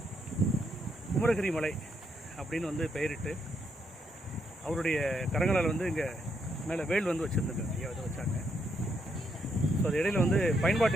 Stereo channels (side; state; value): both; normal; correlation 0.77